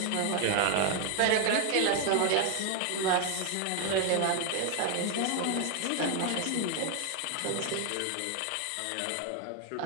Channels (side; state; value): both; different; correlation 0.01